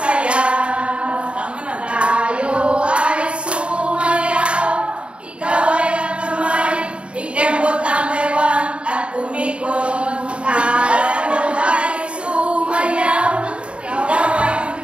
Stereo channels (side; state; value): left; late; 0.058 ms